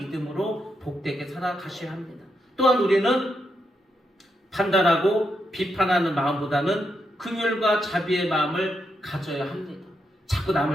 복되게 살아가셔야 합니다. 또한 우리는 판단하고 비판하는 마음보다는 긍휼과 자비의 마음을 가져야 합니다. 자꾸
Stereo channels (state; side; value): normal; both; correlation 0.82